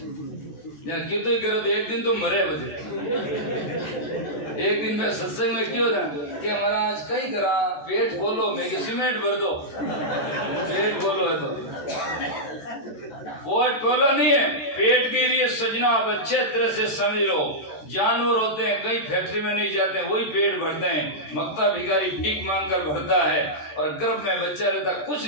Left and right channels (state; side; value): late; right; 14 ms